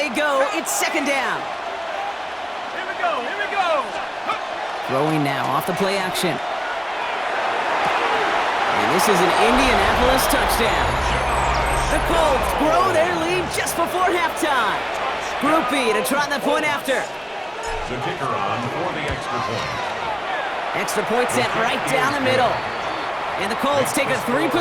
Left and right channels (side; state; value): both; identical; correlation 1.00